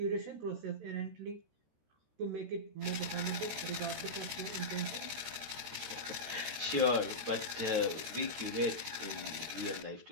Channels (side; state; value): left; late; 13 ms